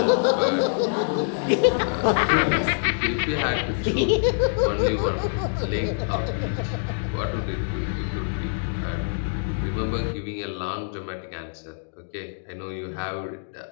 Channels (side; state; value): right; silent; digital silence